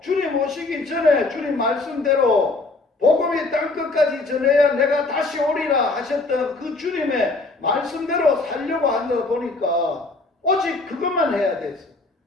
주님 오시기 전에 주님 말씀대로 복음이 땅끝까지 전해야 내가 다시 오리라 하셨던 그 주님의 말씀대로 살려고 하다 보니까 오직 그것만 해야 됐어.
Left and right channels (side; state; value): right; quieter; 3.3 dB